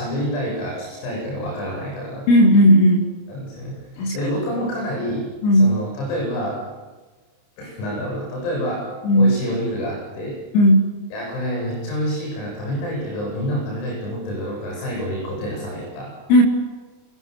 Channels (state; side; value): late; right; 29 ms